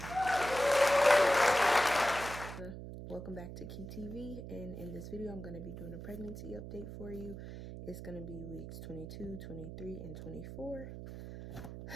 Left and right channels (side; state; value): right; noise; hum, 10 dB below the sound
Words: Welcome back to Key TV, and in this video I'm going to be doing a pregnancy update for you. It's going to be weeks 22, 23, and 24.